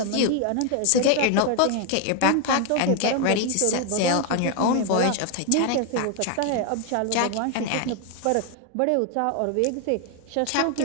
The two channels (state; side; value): different; both; correlation 0.01